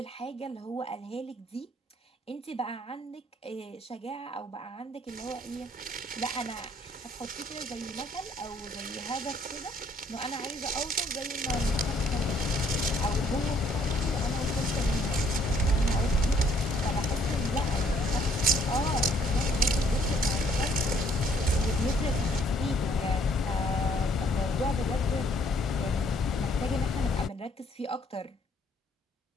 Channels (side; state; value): both; normal; correlation 0.64